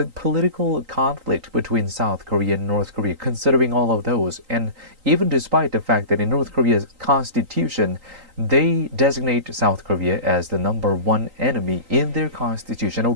conflict between South Korea and North Korea, considering all of those, and even despite the fact that in North Korea's constitution, they designate South Korea as the number one enemy in their constitution.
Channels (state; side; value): late; left; 3.8 ms